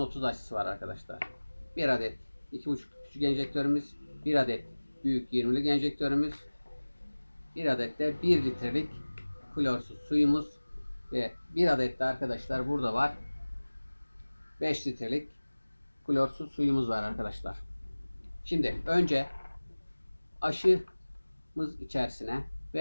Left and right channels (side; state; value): both; inverted; correlation -1.00